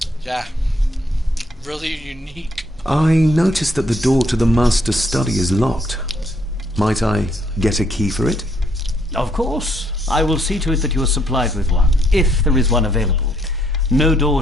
Yeah. Really unique. I noticed that the door to the master's study is locked. Might I get a key for it? Of course. I will see to it that you are supplied with one, if there is one available. No door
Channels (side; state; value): both; normal; correlation 0.70